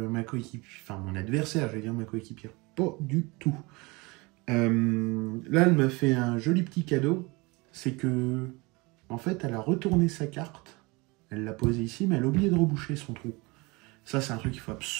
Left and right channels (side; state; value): left; quieter; 25.5 dB